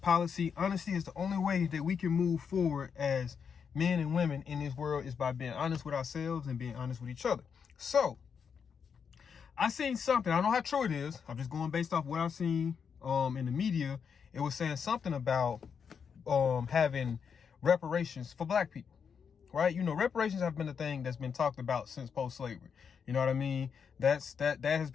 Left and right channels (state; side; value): quieter; right; 6.6 dB